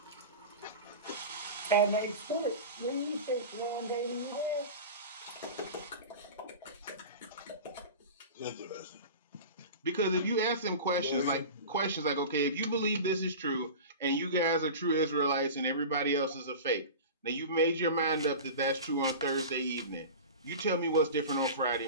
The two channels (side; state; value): both; inverted; correlation -0.31